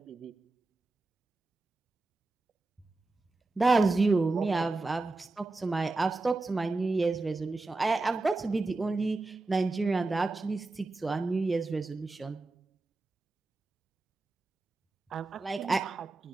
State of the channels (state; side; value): quieter; left; 3.3 dB